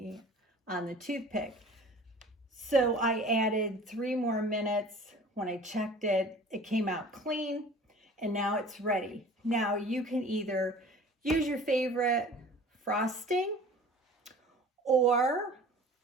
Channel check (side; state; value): both; normal; correlation 0.45